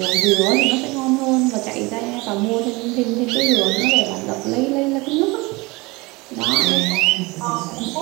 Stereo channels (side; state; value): left; quieter; 24.3 dB